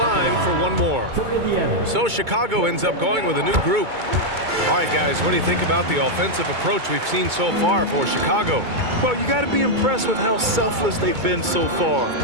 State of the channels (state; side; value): late; left; 2.2 ms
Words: for 1 more. For Indiana. So Chicago ends up going with a new group. All right, guys, what do you think about the offensive approach we've seen so far for Chicago? Well, you got to be impressed with how selfless they've been so far.